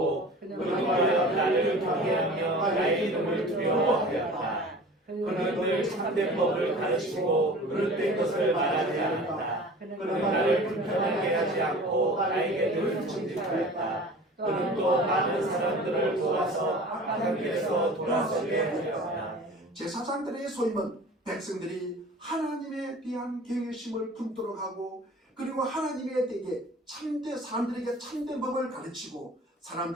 그동안 나를 경외하며 나의 이름을 두려워하였다. 그는 늘 참된 법을 가르치고 그릇된 것을 말하지 않았다. 그는 나를 불편하게 하지 않고 나에게 늘 정직하였다. 그는 또 많은 사람들을 도와서 악한 길에서 돌아서게 하였다. 제사장들의 소임은 백성들이 하나님에 대한 경외심을 품도록 하고 그리고 하나님에 대해 사람들에게 참된 법을 가르치고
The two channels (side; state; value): both; normal; correlation 0.41